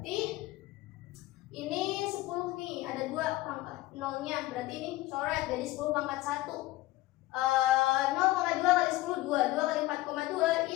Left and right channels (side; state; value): right; quieter; 17.9 dB